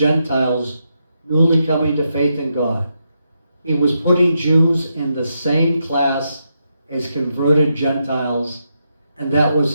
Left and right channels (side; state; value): both; inverted; correlation -0.83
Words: newly coming to faith in God. He was putting Jews in the same class as converted Gentiles, and that